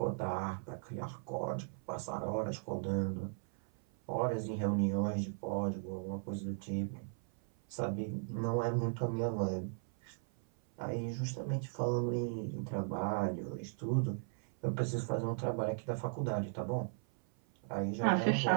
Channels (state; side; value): silent; left; 53 dB below the other